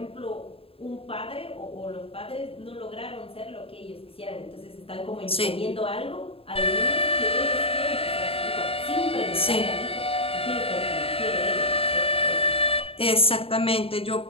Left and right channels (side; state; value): right; late; 0.27 ms